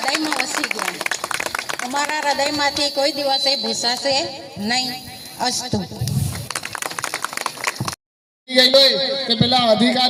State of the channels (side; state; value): both; identical; correlation 1.00